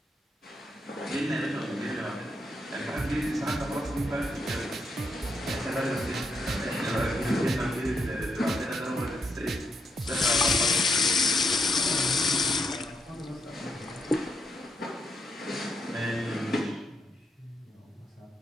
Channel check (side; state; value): both; normal; correlation 0.80